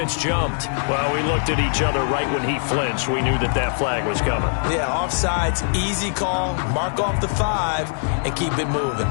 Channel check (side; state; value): right; silent; digital silence